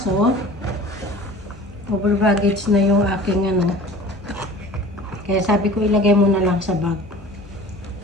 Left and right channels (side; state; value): both; normal; correlation 0.42